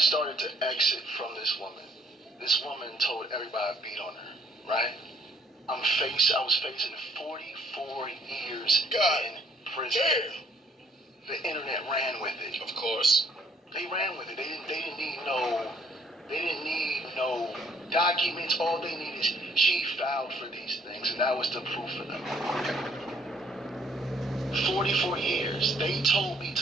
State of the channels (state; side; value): normal; both; correlation 0.64